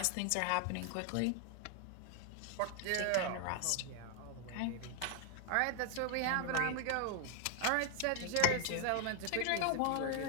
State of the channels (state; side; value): different; both; correlation 0.00